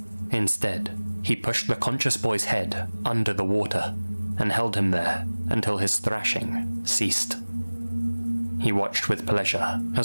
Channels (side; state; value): both; inverted; correlation -1.00